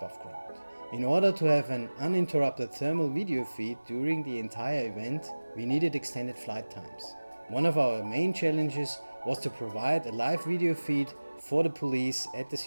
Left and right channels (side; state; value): both; inverted; correlation -1.00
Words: ground. In order to have an uninterrupted thermal video feed during the entire event, we needed extended flight times. One of our main challenges was to provide a live video feed for the police at the